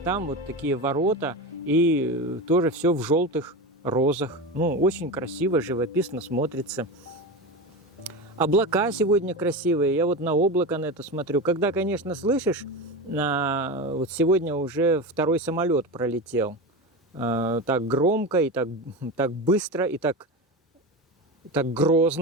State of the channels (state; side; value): normal; both; correlation 0.22